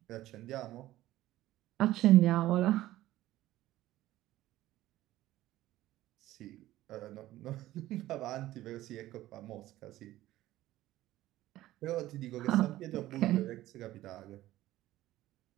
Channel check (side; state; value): left; quieter; 15.3 dB